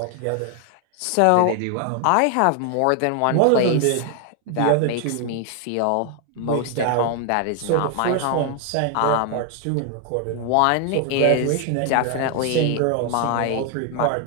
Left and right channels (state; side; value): different; both; correlation 0.01